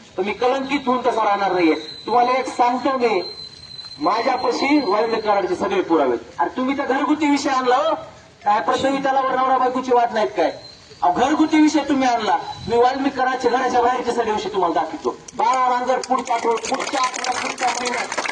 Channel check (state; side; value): identical; both; correlation 1.00